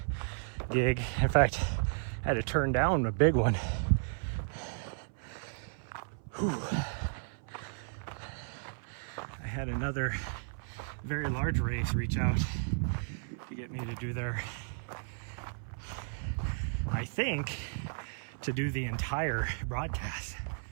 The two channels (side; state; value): left; silent; 55 dB below the other